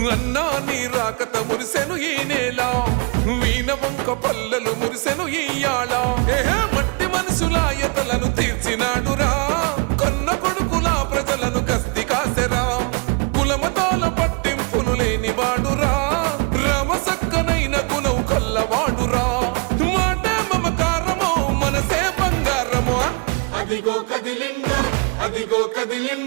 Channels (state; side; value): quieter; left; 33.2 dB